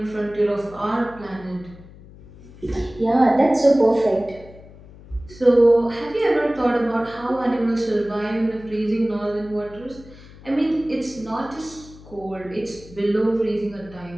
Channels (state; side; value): noise; left; hum, 20 dB below the sound